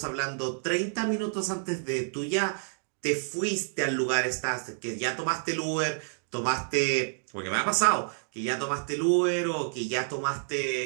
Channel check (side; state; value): left; silent; digital silence